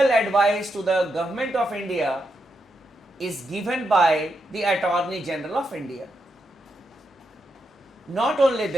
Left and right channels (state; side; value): normal; both; correlation 0.83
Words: advice to the government of India is given by the Attorney General of India. Not only